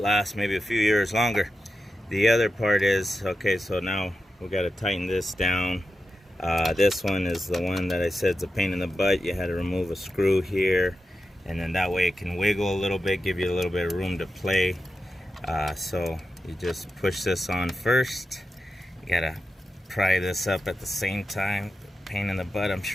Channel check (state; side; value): normal; both; correlation 0.90